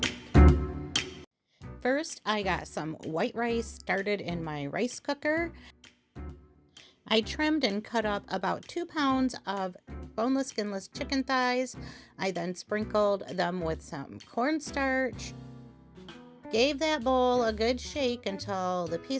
First, I got some white rice started in my rice cooker. I trimmed and cut up about 2 pounds of boneless, skinless chicken thighs. I then sprinkled them with some cornstarch. Gave that bowl a good shake until the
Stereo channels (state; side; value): identical; both; correlation 1.00